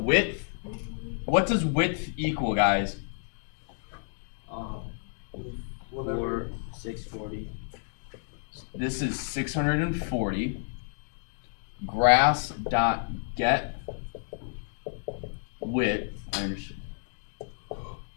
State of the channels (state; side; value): silent; right; digital silence